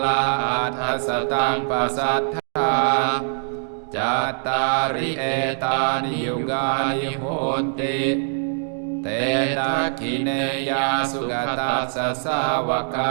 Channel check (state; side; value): silent; left; digital silence